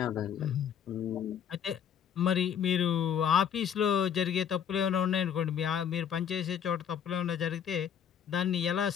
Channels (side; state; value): right; quieter; 8.5 dB